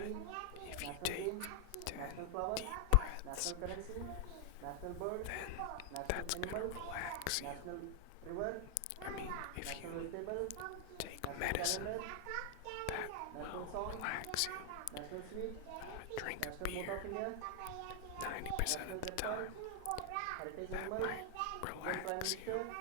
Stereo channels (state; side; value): different; both; correlation 0.00